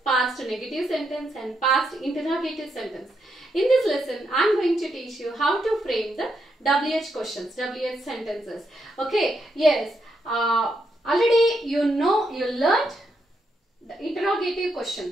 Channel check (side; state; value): both; normal; correlation 0.80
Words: past negative sentence and past interrogative sentence. In this lesson, I am going to teach you how to frame the WH questions, WH sentences. Okay, yes, already you learned the interrogative